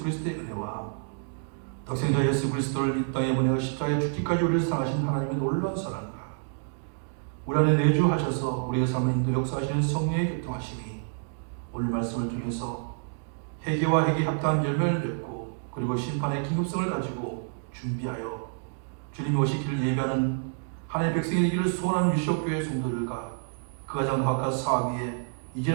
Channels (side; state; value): left; silent; digital silence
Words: 그리스도의 은혜와 독생자 예수 그리스도를 이 땅에 보내가 십자가에 죽기까지 우리를 사랑하신 하나님의 놀라운 사랑과 우리 안에 내주하셔서 우리의 삶을 인도 역사하시는 성령의 교통하심이 오늘 말씀을 통해서 회개와 회개 합당한 열매를 맺고 그리고 심판의 긴급성을 가지고 준비하여 주님이 오시기를 예배하는 하나님의 백성이 되기를 소원하는 유시옥교회 성도들과 그 가정 바깥 사학위에